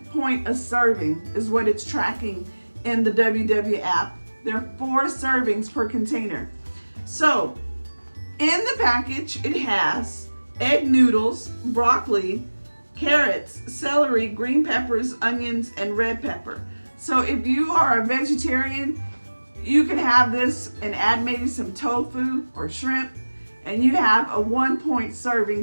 point a serving is what it's tracking in the WW app. There are 4 servings per container. So in the package, it has egg noodles, broccoli, carrots, celery, green peppers, onions, and red pepper. So if you are a vegetarian, you can have this and add maybe some tofu or shrimp, and you have a 1 point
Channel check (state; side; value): inverted; both; correlation -1.00